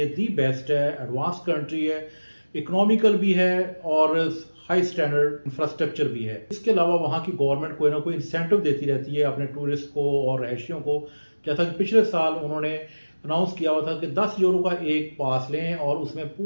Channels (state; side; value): inverted; both; correlation -1.00